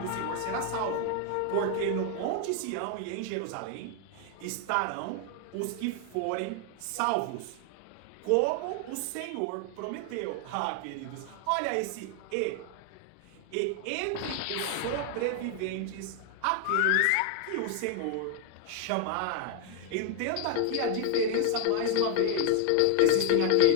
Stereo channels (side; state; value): both; different; correlation 0.00